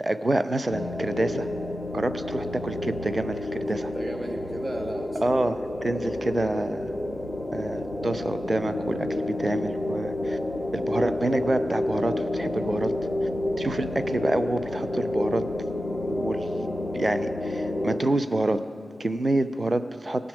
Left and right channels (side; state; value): both; normal; correlation 0.92